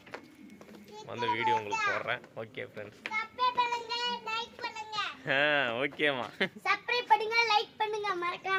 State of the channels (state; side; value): identical; both; correlation 1.00